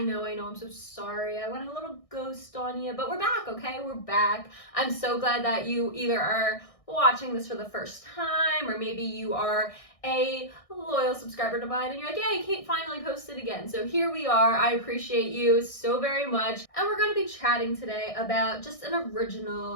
know, I'm so sorry. I went a little ghost on you, but we're back, okay? We're back. I'm so glad that you either are watching this for the first time, or maybe you are a loyal subscriber to mine and you're like, yay, Kate finally posted again. So here we are. I appreciate you so very much. And we're going to be chatting today about just an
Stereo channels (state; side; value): late; right; 1.6 ms